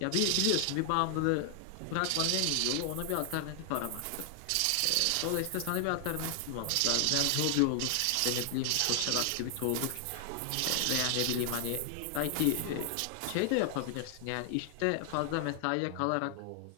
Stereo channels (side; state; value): both; different; correlation 0.00